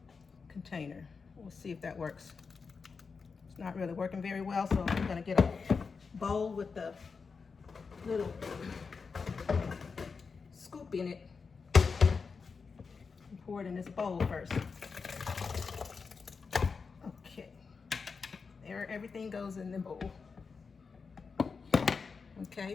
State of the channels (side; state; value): right; quieter; 5.1 dB